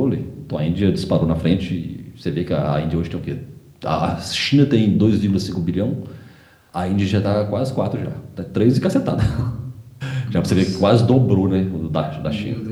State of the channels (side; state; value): both; identical; correlation 1.00